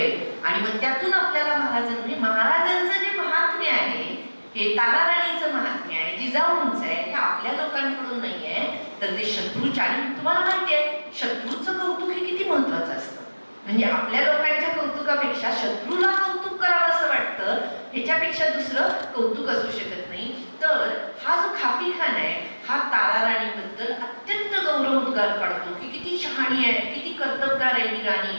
आणि मग त्यातून आपल्याला महाराजांचं जे महात्म्य आहे, हे ताराराणीचं महात्म्य आहे, जिजाऊंचं आहे, हे आपल्या लोकांकडून नाहीये, तर ते शत्रूच्या. आणि तुम्हाला माहिती आहे शत्रूचं कौतुक हे किती महत्वाचं असतं. म्हणजे आपल्या लोकांच्या कौतुकापेक्षा शत्रूला कौतुक करावं असं वाटतं, ह्याच्यापेक्षा दुसरं कौतुक असू शकत नाही. तर हा जो खाफी खान आहे हा ताराराणीबद्दल अत्यंत गौरवोद्गार काढतो की किती शहाणी आहे, किती कर्तबगार आहे ही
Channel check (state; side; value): inverted; both; correlation -1.00